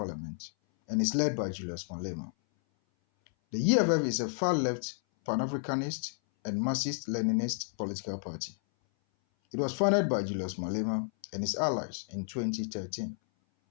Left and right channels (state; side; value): silent; right; 57 dB below the other